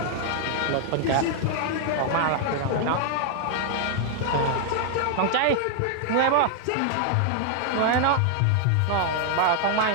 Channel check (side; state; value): both; different; correlation 0.00